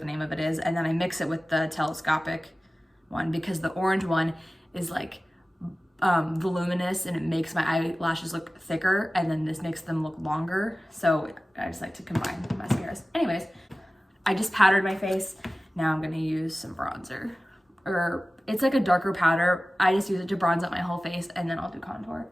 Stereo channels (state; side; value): normal; both; correlation 0.97